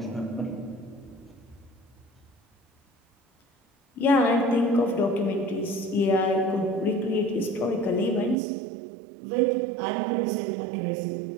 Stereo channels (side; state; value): left; drops out; at 8.3 s